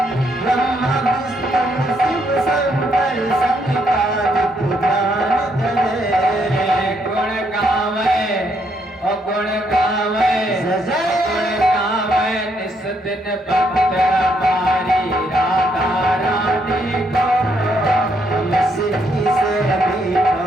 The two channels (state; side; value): normal; both; correlation 0.74